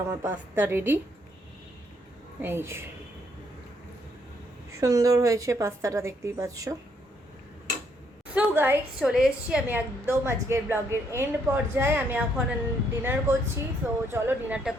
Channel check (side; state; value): both; normal; correlation 0.72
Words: আমার পাস্তা রেডি। এই সুন্দর হয়েছে পাস্তাটা, দেখতেই পাচ্ছ। সো গাইস, চলে এসেছি আমি একদম আজকের ব্লগের এন্ড পর্যায়ে। আমি এখন ডিনার করছি। সো চলো ডিনারটা